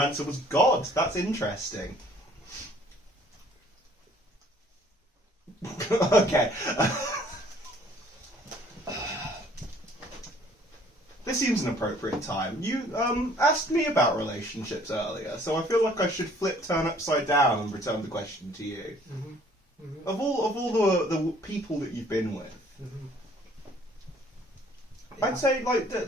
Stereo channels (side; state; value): both; normal; correlation 0.58